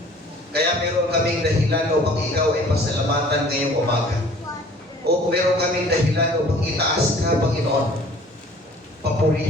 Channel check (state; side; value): normal; both; correlation 0.51